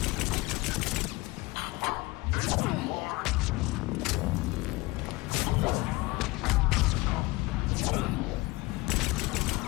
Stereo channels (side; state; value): right; quieter; 21.6 dB